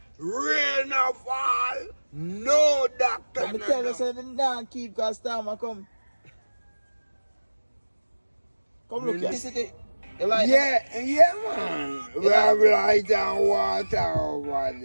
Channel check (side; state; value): both; inverted; correlation -1.00